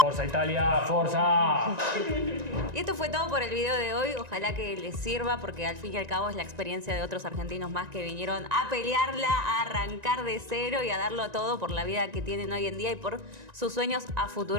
¡Forza Italia! ¡Forza! Y esto fue todo por el video de hoy. Ojalá que les sirva, porque al fin y al cabo es la experiencia de otros argentinos más que vinieron a pelearla, a arrancar de cero y a darlo todo por la vida que tienen hoy en día y por sus sueños a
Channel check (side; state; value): left; late; 1.9 ms